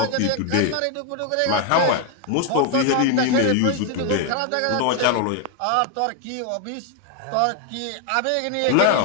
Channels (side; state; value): both; different; correlation 0.01